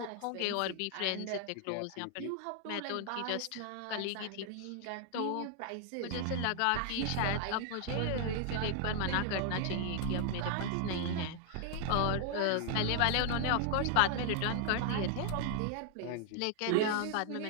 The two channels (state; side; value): different; both; correlation 0.00